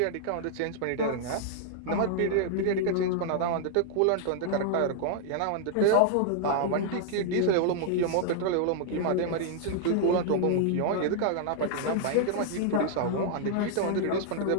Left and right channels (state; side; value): different; both; correlation -0.01